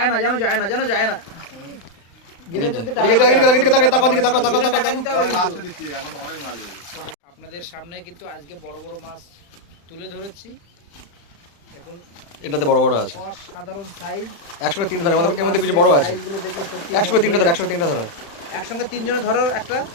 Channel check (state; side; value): late; right; 35 ms